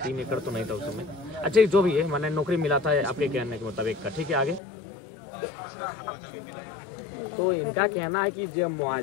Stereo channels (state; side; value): drops out; right; at 4.6 s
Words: 3 एकड़ तो नहीं था उस समय। अच्छा जो भी है, मैंने नौकरी मिला था आपके कहने के मुताबिक का, ठीक है। आगे तो इनका कहना है कि जो